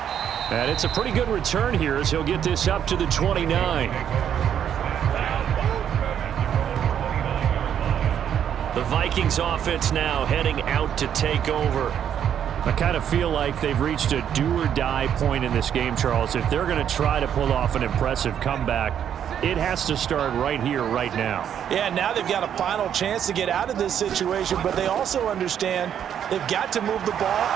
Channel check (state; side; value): quieter; left; 9.2 dB